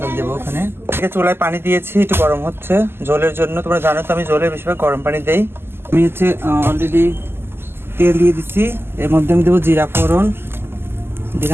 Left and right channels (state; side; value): late; left; 0.11 ms